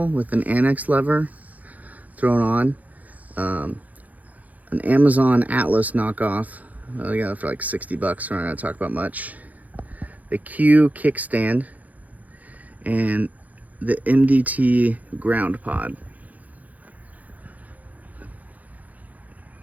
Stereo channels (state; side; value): late; left; 0.074 ms